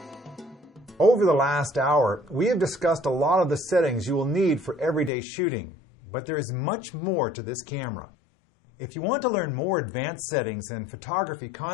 Over the last hour, we have discussed a lot of the settings you will need for everyday shooting, but there is much more to this camera. If you want to learn more advanced settings and photography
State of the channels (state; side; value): drops out; right; at 5.1 s